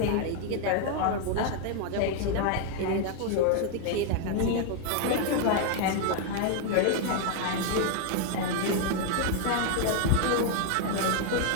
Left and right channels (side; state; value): both; different; correlation 0.00